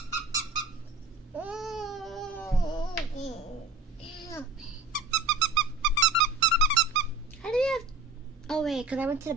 How do we have... Oh wait, because I went to the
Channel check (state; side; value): quieter; left; 3.5 dB